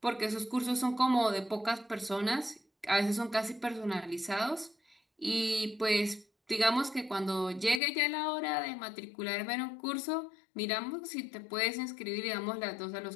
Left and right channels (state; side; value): drops out; right; at 7.8 s